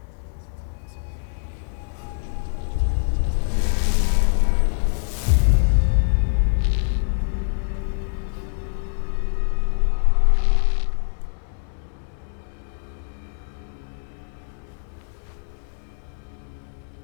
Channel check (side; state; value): right; silent; digital silence